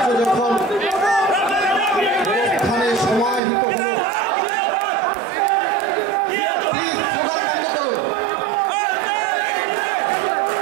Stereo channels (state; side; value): drops out; left; at 3.4 s